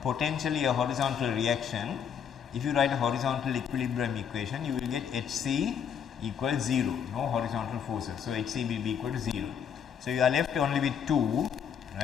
potentially a horizontal reaction, if you write a horizontal equilibrium equation, you will get Hc equals 0, no horizontal forces. So Hc will be equal to 0. So you are left only with 2,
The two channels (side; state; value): right; quieter; 7.8 dB